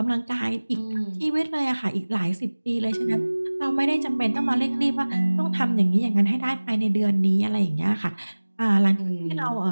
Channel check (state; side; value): inverted; both; correlation -1.00